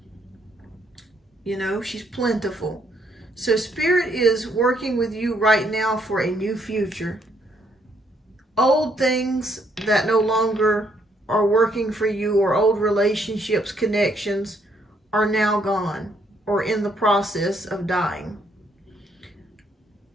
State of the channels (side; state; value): both; normal; correlation 0.71